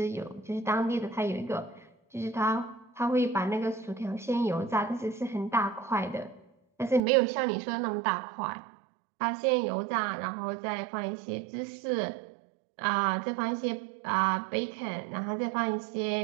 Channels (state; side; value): drops out; left; at 7.0 s